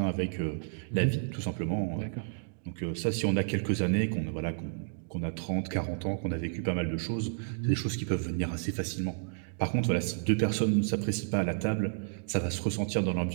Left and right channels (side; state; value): left; silent; digital silence